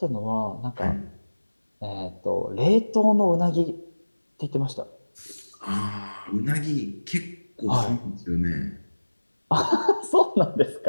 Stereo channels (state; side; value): inverted; both; correlation -1.00